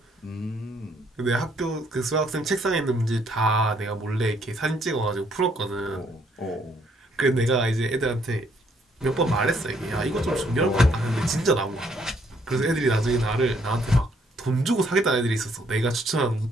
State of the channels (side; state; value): both; normal; correlation 0.68